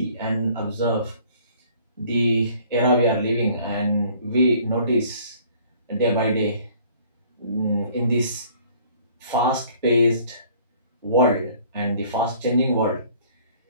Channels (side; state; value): both; inverted; correlation -0.55